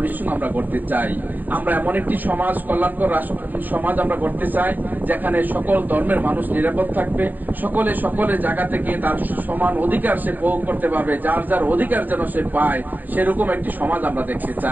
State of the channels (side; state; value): left; late; 0.086 ms